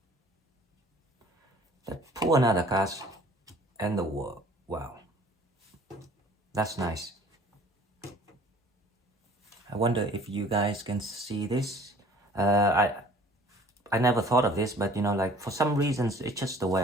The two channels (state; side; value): normal; both; correlation 0.52